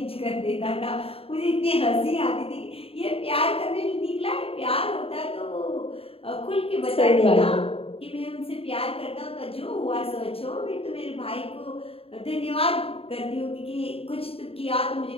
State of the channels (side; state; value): right; late; 0.28 ms